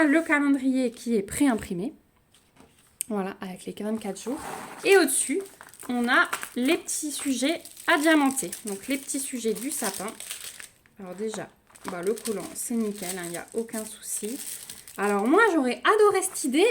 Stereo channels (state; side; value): identical; both; correlation 1.00